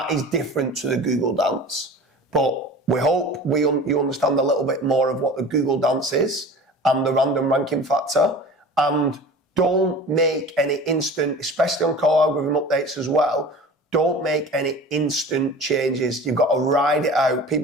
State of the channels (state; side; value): normal; both; correlation 0.39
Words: is different to the Google dance. But we hope you understand a little bit more of what the Google dance is and the random ranking factor. And don't make any instant, especially on core algorithm updates as well, don't make any instant changes. You've got to ride it out.